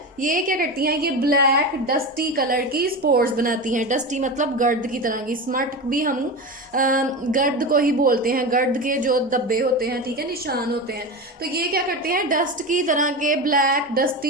ये क्या करती हैं, ये ब्लैक डस्टी कलर की स्पोर्स बनाती हैं। डस्टी मतलब गर्द की तरह की, स्मट भी हम गर्द को ही बोलते हैं, गर्द के जो धब्बे होते हैं, ठीक है, निशान होते हैं। तो ये क्या करते हैं, डस्ट की तरह के ब्लैक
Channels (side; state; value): both; normal; correlation 0.23